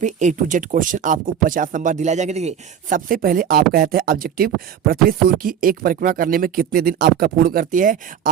A to Z क्वेश्चन आपको 50 नंबर दिलाए जाएंगे। देखिए सबसे पहले आपका आता है ऑब्जेक्टिव, पृथ्वी सूर्य की एक परिक्रमा करने में कितने दिन आपका पूर्ण करती है।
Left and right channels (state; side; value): quieter; left; 8.7 dB